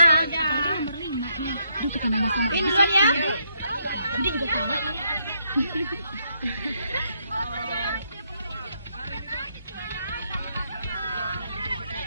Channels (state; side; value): inverted; both; correlation -0.75